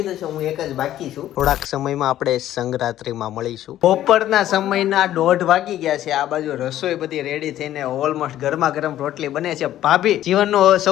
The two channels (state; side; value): quieter; right; 12.7 dB